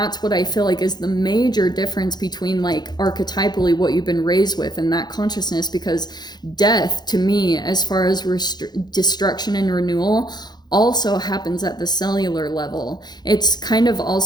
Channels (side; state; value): right; late; 0.20 ms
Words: what I feel like is the major difference between like archetypally what you've been raised with and that consciousness. Because death to me, as far as destruction and renewal, also happens at the cellular level. It's kind of